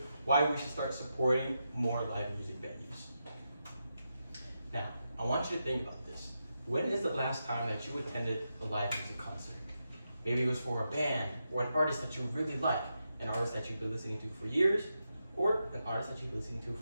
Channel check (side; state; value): both; inverted; correlation -0.86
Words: why we should start supporting more live music venues. Now, I want you to think about this. When is the last time that you attended a live music concert? Maybe it was for a band, or an artist that you really like, an artist that you've been listening to for years, or an artist that you've been listening to